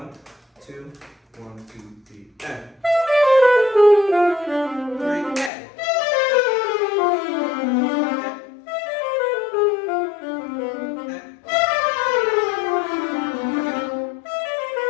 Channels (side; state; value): right; drops out; at 5.5 s